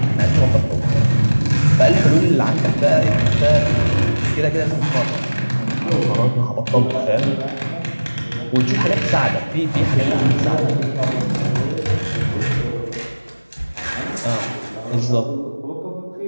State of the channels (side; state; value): both; inverted; correlation -1.00